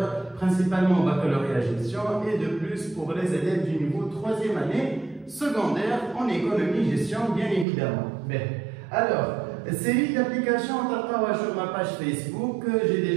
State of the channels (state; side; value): drops out; left; at 7.7 s